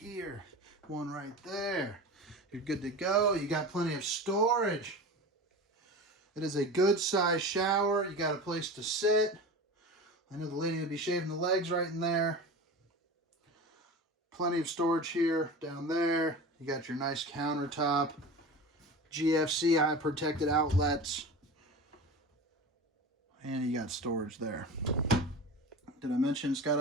One right there. You're good to go. You got plenty of storage. It is a good size shower. You got a place to sit. I know the lady will be shaving the legs right in there. Plenty of storage here, down there. You got your nice countertop. GFC eye protected outlets. And you got storage there. Did I mention it's got a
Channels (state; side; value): normal; both; correlation 0.31